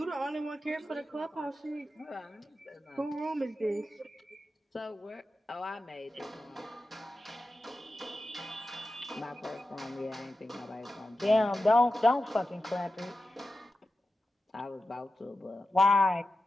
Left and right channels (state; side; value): normal; both; correlation 0.92